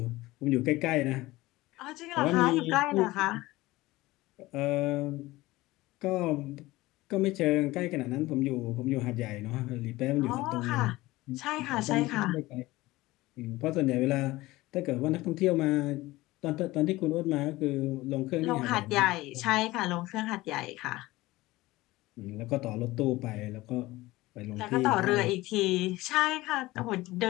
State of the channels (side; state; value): right; quieter; 19.0 dB